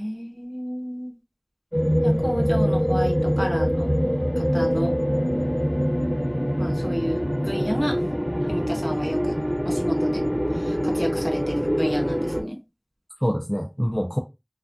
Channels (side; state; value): both; identical; correlation 1.00